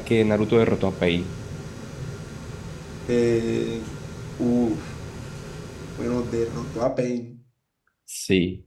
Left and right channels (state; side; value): identical; both; correlation 1.00